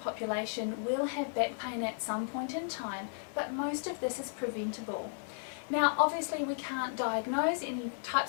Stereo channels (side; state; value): right; silent; digital silence